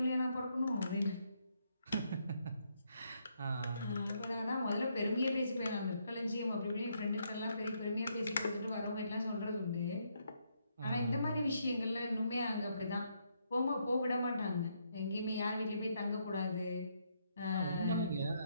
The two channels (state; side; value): inverted; both; correlation -0.75